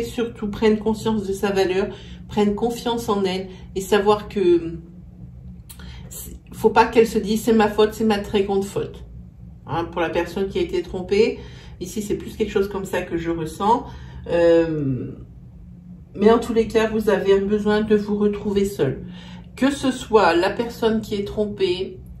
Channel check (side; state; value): both; identical; correlation 1.00